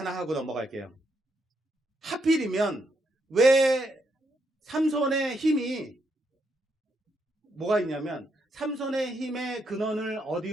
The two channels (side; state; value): both; normal; correlation 0.78